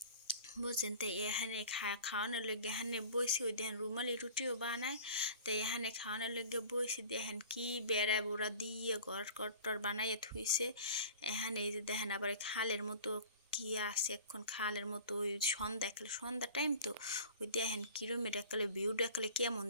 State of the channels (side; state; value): both; inverted; correlation -0.42